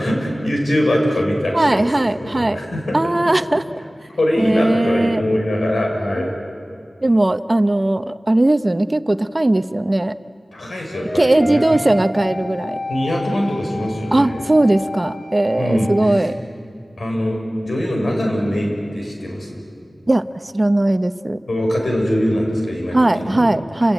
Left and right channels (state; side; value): normal; both; correlation 0.98